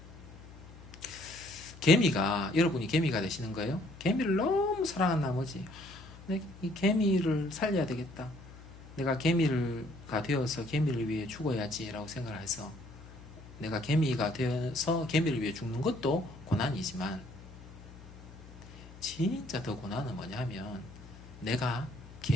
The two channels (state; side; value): noise; left; hum, 18 dB below the sound